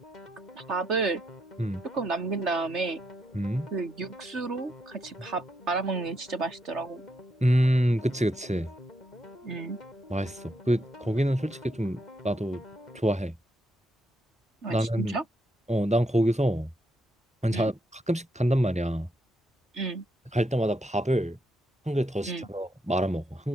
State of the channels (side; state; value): both; normal; correlation 0.79